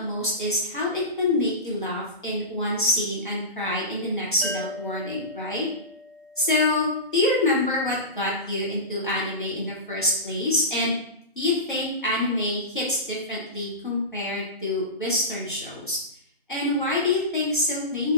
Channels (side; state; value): both; normal; correlation -0.20